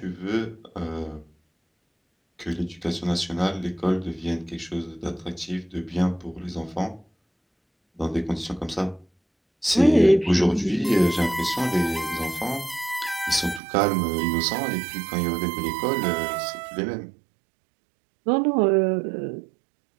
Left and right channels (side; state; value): left; drops out; at 13.6 s